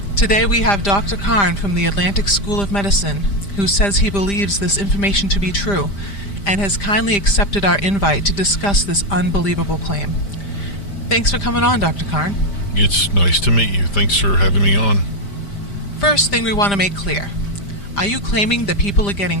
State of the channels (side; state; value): right; late; 5.0 ms